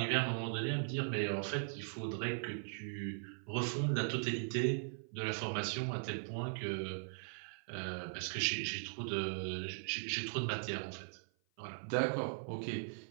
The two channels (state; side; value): silent; left; 51 dB below the other